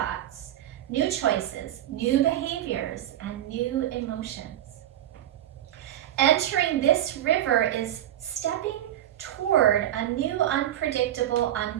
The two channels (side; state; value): left; quieter; 12.3 dB